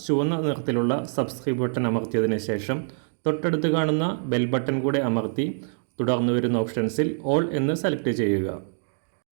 ചുവന്ന നിറത്തിലുള്ള സബ്സ്ക്രൈബ് ബട്ടൺ അമർത്തിയതിനു ശേഷം തൊട്ടടുത്ത് കാണുന്ന ബെൽ ബട്ടൺ കൂടെ അമർത്തി തുടർന്ന് വരുന്ന ഓപ്ഷൻസിൽ ഓൾ എന്ന് സെലക്ട് ചെയ്യുക.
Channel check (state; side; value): silent; left; digital silence